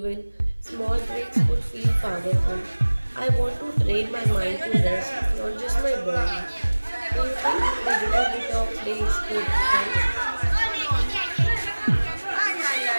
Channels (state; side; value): inverted; both; correlation -1.00